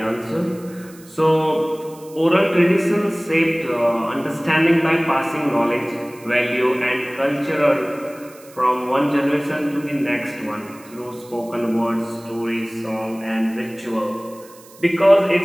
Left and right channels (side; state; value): right; noise; hiss, 23 dB below the sound